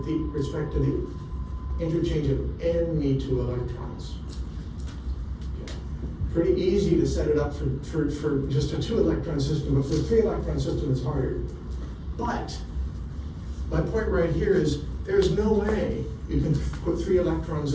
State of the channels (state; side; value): identical; both; correlation 1.00